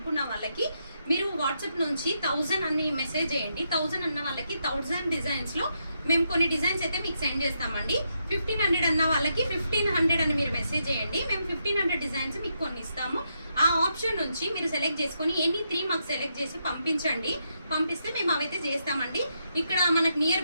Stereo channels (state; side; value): inverted; both; correlation -0.80